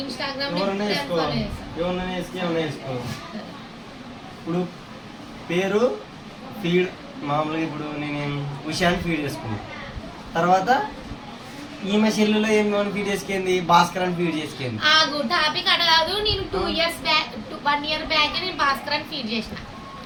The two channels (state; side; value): identical; both; correlation 1.00